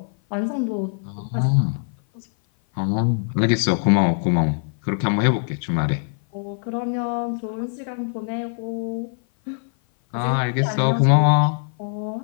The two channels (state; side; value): silent; right; 56 dB below the other